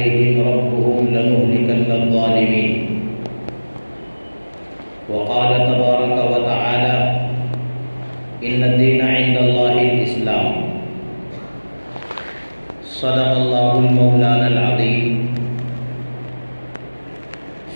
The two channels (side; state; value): both; inverted; correlation -1.00